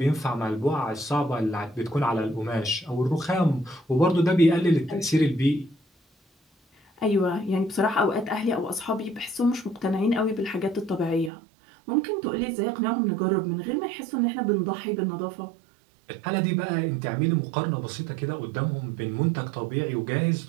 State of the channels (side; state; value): left; drops out; at 11.3 s